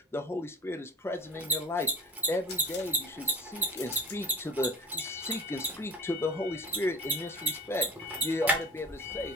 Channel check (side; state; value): both; normal; correlation 0.44